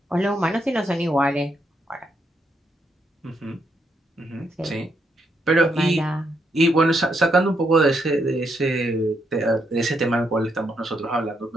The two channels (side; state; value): both; normal; correlation 0.78